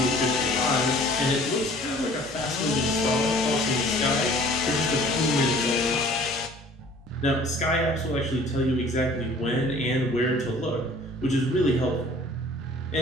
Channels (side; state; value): both; normal; correlation 0.51